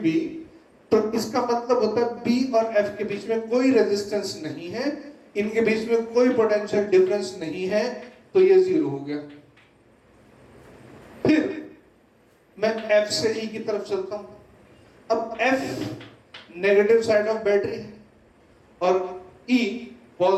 तो इसका मतलब होता है B और F के बीच में कोई रेजिस्टेंस नहीं है, इनके बीच में कोई पोटेंशियल डिफरेंस नहीं है, तो ये 0 हो गया। फिर मैं F से E की तरफ चलता हूं, अब F negative side of battery और E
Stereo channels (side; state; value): both; identical; correlation 1.00